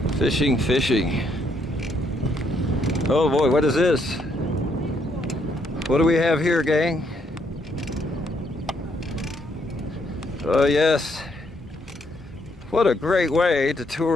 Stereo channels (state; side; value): normal; both; correlation 0.72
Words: fishing, fishing. Oh boy, what is this? What do we have here, gang? Oh yes, what a great way to